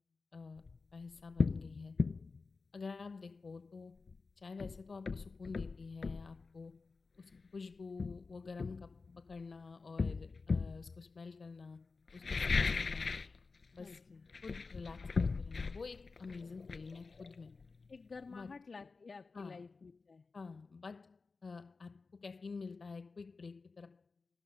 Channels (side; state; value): right; quieter; 4.2 dB